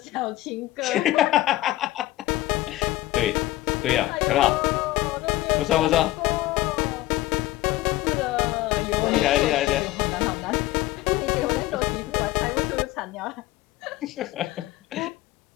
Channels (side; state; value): right; quieter; 16.8 dB